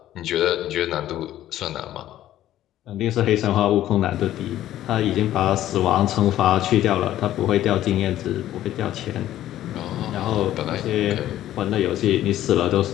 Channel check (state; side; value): quieter; right; 13.1 dB